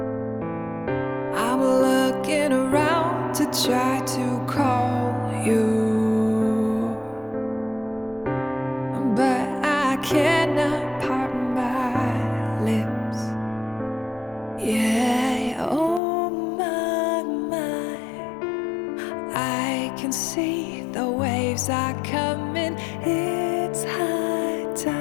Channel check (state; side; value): drops out; right; at 16.0 s